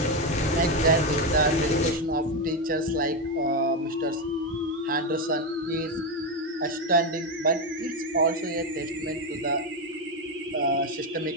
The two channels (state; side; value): normal; both; correlation 0.10